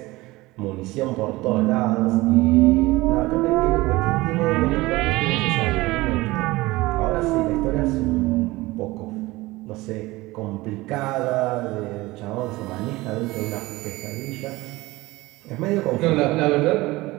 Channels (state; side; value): quieter; left; 20.2 dB